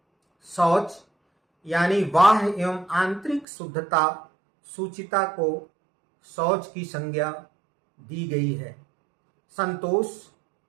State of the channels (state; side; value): drops out; left; at 3.5 s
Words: शौच यानी बाह्य एवं आंतरिक शुद्धता, शुचिता को शौच की संज्ञा दी गई है। संतोष,